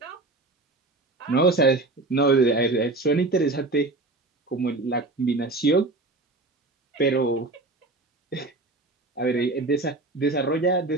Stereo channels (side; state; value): left; quieter; 3.1 dB